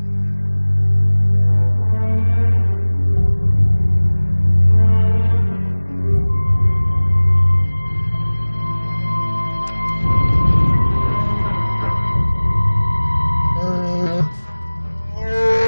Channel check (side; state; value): both; inverted; correlation -1.00